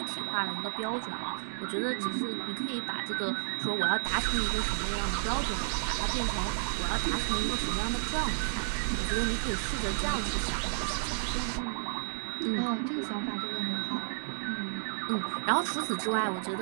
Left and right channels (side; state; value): left; silent; digital silence